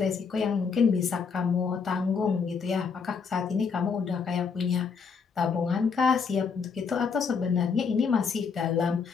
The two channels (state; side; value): quieter; right; 5.7 dB